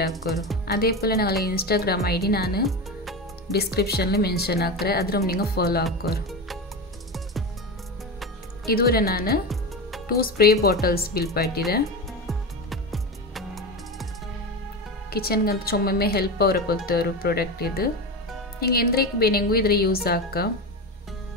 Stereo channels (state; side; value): normal; both; correlation 0.21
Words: ಹಾಕೋರು അതേപോലെ ഞങ്ങളെ ഇൻസ്റ്റാഗ്രാം ഐ ഡി ನಾನು ಡಿಸ್ಕ್ರಿಪ್ಷನ್ಲಿ ಮೆನ್ಷನ್ ಹಾಕ್ರೆ ಅದ್ರ ನೀವು ಫಾಲೋ ಹಾಕೋರು ಇದುವರೆ ನಾನು 2 ಸ್ಪ್ರೇ ಬಾಟಲ್ಸ್ ಬಿಲ್ ಪಾಟಿದೆ ಕಿಚನ್ಗಂತ ಚೊಮ್ಮೆ ಹೆಲ್ಪ್ ಅವರ ಕೊಲ್ತೆ ഒരു ಪ್ರಾಡಕ್ಟ್ ಇದು ನಿಮಗೆ ಎಂದ್ರೇಕ್ ಬೇನೆಂಗೂ ಇದ್ರ ಯೂಸ್ ಹಾಕ